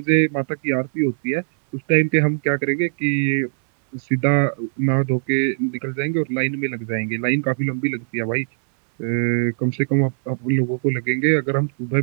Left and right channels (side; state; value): left; silent; 65 dB below the other